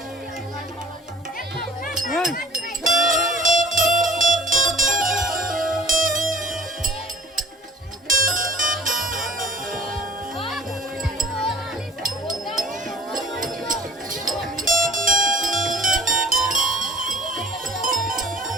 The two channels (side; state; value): both; normal; correlation 0.47